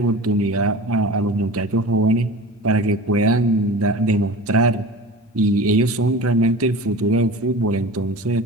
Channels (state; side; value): normal; both; correlation 0.35